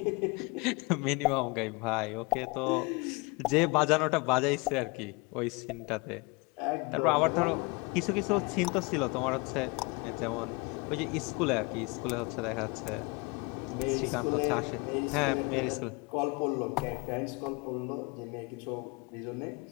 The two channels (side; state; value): right; quieter; 27.6 dB